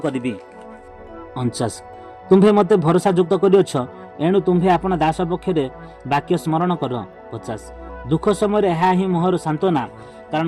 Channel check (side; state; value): both; identical; correlation 1.00